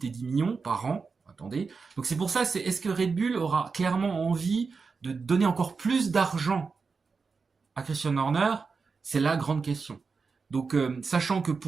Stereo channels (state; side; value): quieter; left; 4.8 dB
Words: et 10 millions par an. Attendez. Donc c'est pour ça, est-ce que Red Bull aura clairement envie de donner encore plus d'argent à Christian Horner? C'est la grande question. Donc, sachant que